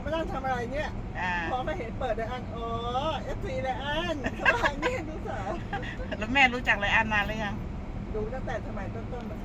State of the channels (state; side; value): identical; both; correlation 1.00